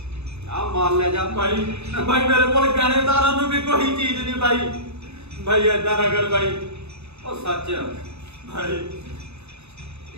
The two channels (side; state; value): left; late; 0.80 ms